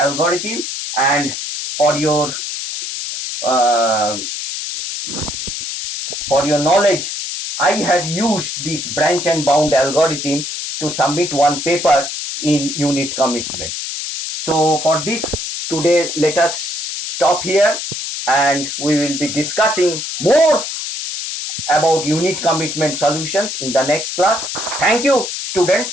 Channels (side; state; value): left; noise; hiss, 5 dB below the sound